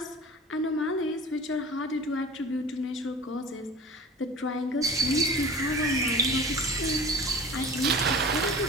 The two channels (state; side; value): normal; both; correlation 0.37